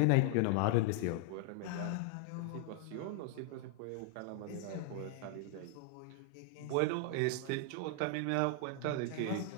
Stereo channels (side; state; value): both; different; correlation 0.00